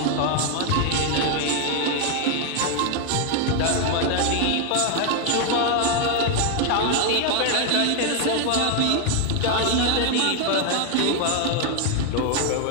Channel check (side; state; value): both; different; correlation 0.01